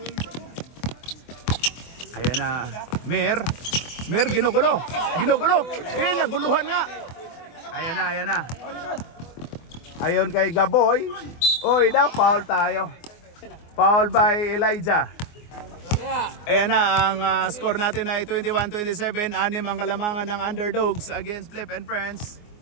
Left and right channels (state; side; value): late; right; 24 ms